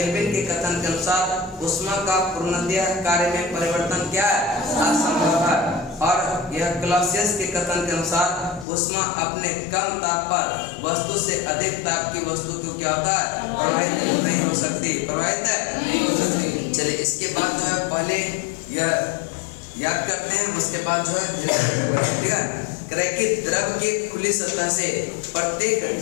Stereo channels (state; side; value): drops out; right; at 8.7 s